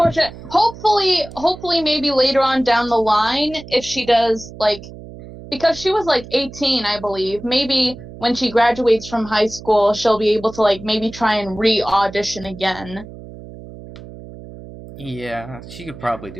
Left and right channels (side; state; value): right; noise; hum, 15 dB below the sound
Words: Hopefully, maybe later on down the line, if she does, like, because she was, like, 18, I believe, maybe when she graduates from high school, she'll be able to, like, maybe try and re-audition again. Yeah, she could probably